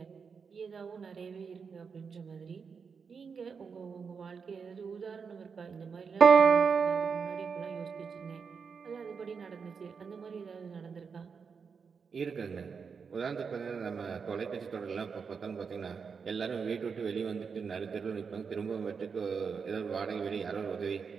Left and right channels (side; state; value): left; quieter; 5.8 dB